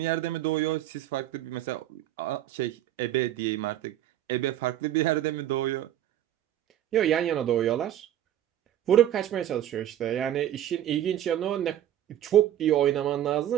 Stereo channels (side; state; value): left; quieter; 11.7 dB